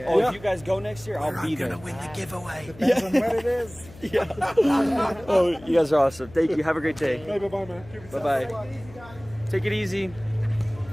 Oh, if you guys go next year, I'll be there. I'm gonna win the giveaway. Depends on when it is. Yeah. Oh, you guys are awesome. Thank you. Have a great day. Bye-bye, man. Bye-bye. Take it easy.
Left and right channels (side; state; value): left; noise; hum, 20 dB below the sound